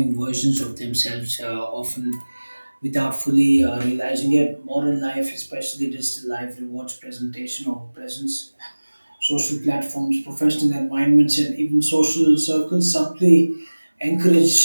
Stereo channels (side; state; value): both; inverted; correlation -1.00